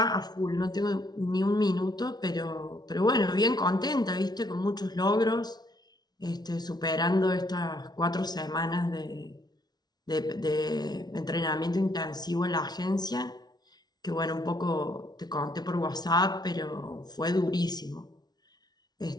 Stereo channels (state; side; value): late; right; 0.19 ms